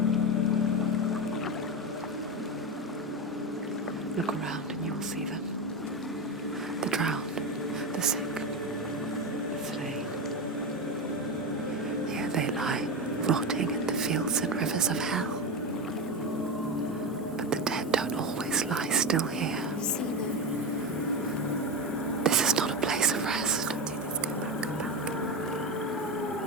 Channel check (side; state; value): both; normal; correlation 0.17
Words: Look around and you'll see them. The drowned, the sick, the slain. Here they lie, rotting in the fields and rivers of hell. But the dead don't always lie still here. You see them? This is not a place of rest. Can't do this. Go back. Go back.